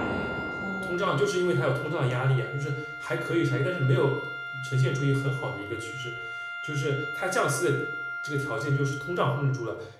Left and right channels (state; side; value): identical; both; correlation 1.00